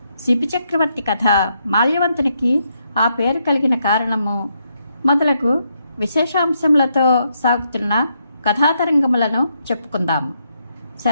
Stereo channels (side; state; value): both; inverted; correlation -0.78